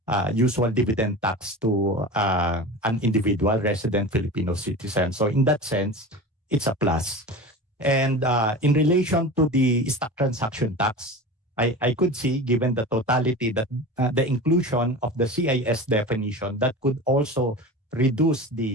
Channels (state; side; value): normal; both; correlation 0.32